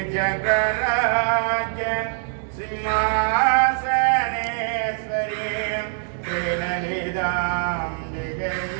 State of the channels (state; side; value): silent; left; digital silence